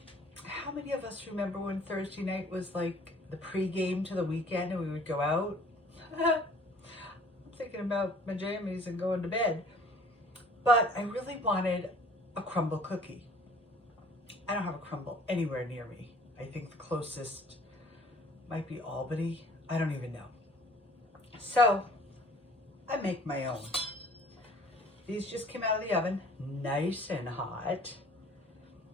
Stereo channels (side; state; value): both; normal; correlation 0.52